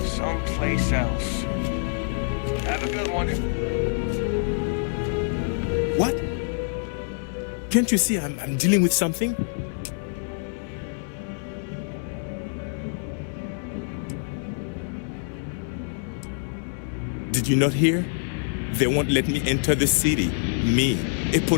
Someplace else. Have a good one. What? Can't you see I'm dealing with something? Did you not hear? They won't let me enter the city. Me, a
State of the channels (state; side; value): silent; right; digital silence